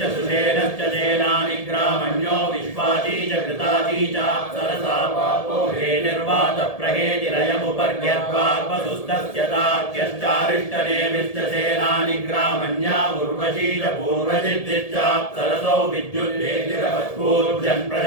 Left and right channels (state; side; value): late; right; 1.7 ms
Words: सुषेणश्च सेनानि ग्रामण्यो विश्वाची च कृताची च सरसा पापो हेतिर्वात प्रहेतिरयमुपर्ग्यद्वार्पसुस्तस्य तार्क्यश्चारिष्टनेमिश्च सेनानि ग्रामण्या उर्वशी च पूर्वजिद्दिश्च सरसौ विद्युद्देतिरवत्पूर्जन्